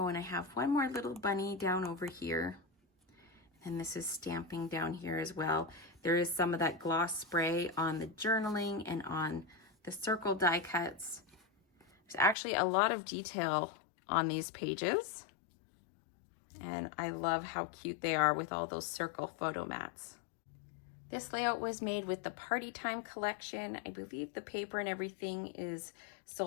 and I have one more little bunny down over here. And this is stamping down here as well. There is some of that gloss spray on the journaling and on the circle die cuts. There's actually a lot of detail on these pages. And I love how cute they are with all those circle photo mats. This layout was made with the Party Time collection. I believe the paper and everything is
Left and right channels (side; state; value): right; drops out; at 12.4 s